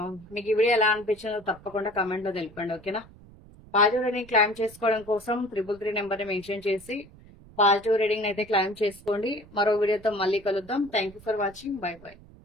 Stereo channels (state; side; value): noise; right; rumble, 22 dB below the sound